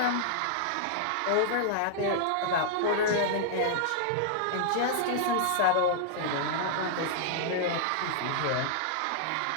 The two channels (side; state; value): both; different; correlation -0.01